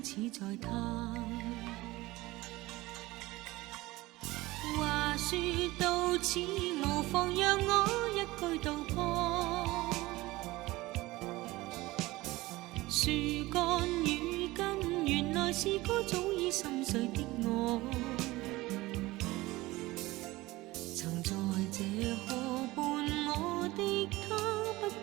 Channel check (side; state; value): left; quieter; 19.5 dB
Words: 似在嘆。話說到此，無妨讓我一句道破。樹幹與根，原來是個早已心碎的我，曾在這河畔，我的他不